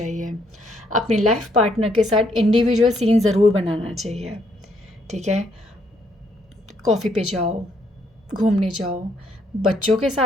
अपने लाइफ पार्टनर के साथ इंडिविजुअल सीन ज़रूर बनाना चाहिए। ठीक है, कॉफ़ी पे जाओ, घूमने जाओ, बच्चों के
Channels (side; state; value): both; normal; correlation 0.71